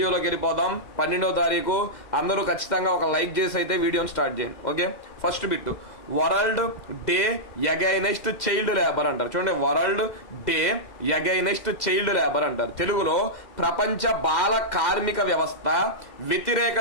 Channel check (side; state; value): right; late; 2.0 ms